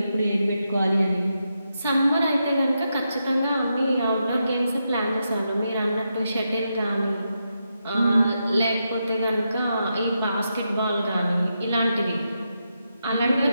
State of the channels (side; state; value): both; inverted; correlation -0.85